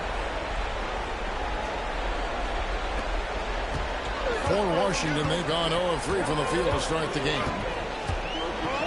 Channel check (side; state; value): both; identical; correlation 1.00